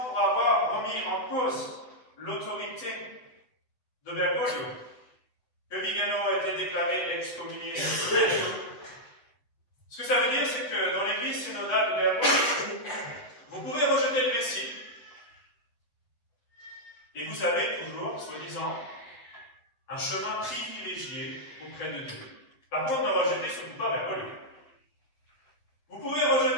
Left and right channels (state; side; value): late; right; 8.1 ms